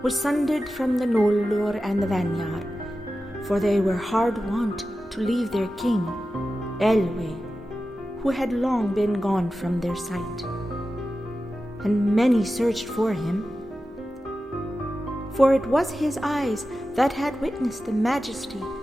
was sundered from the Nolder and the Vanyar, for they were hard wont to leave their king, Elwe, who had long been gone from their sight. And many searched for him, for it was his eyes that had witnessed the majesty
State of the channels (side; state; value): both; normal; correlation 0.93